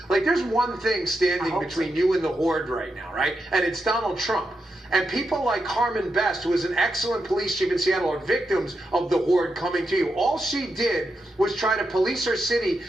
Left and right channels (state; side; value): normal; both; correlation 0.86